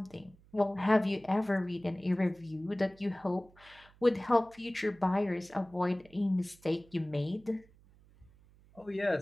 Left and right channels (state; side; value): noise; right; hum, 27 dB below the sound